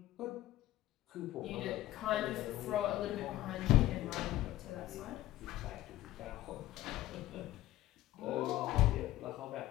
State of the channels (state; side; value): quieter; right; 15.1 dB